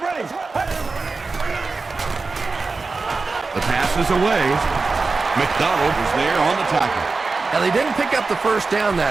ready. The pass is away. McDonald was there on the tackle. Now, they didn't pick up the 1st down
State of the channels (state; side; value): quieter; left; 4.0 dB